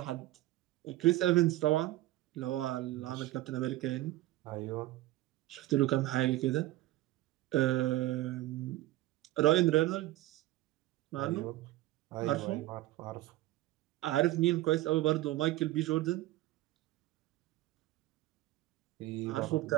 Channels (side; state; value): left; quieter; 16.5 dB